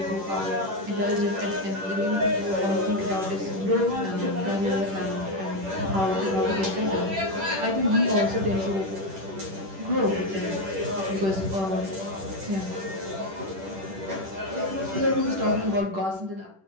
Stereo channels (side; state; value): left; late; 10 ms